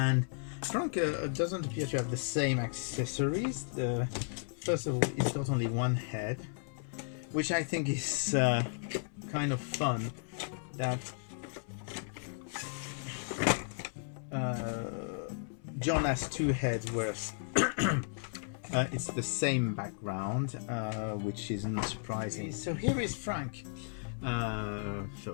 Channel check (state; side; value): silent; right; 55 dB below the other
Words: Frank doesn't appear to have the same accessories. First of all, it's got only one head, which I think is kind of fun. That John has two heads, whereas it's the same background, which isn't surprising. So here is Frank.